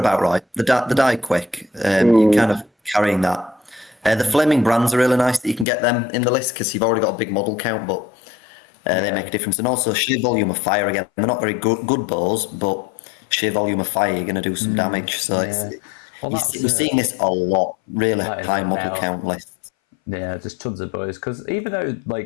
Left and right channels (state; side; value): drops out; right; at 5.7 s